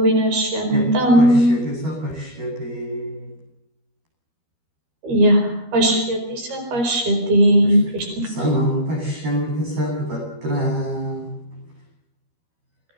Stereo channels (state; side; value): late; left; 12 ms